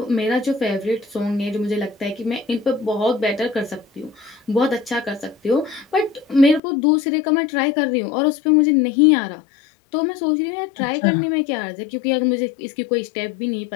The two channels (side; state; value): right; drops out; at 6.6 s